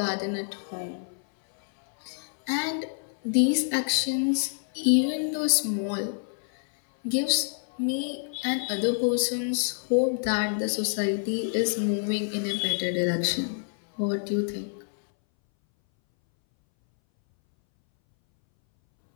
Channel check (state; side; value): silent; right; 60 dB below the other